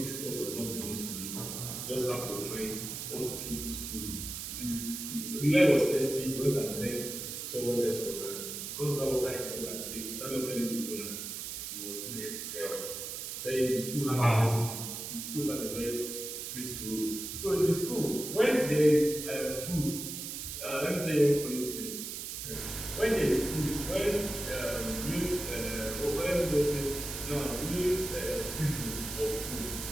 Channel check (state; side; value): noise; right; hiss, 6 dB below the sound